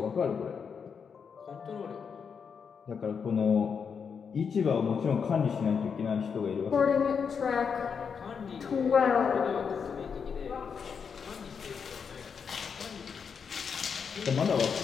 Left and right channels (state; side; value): quieter; right; 6.4 dB